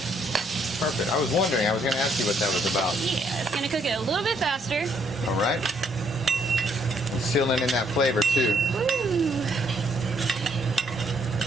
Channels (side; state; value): both; normal; correlation 0.70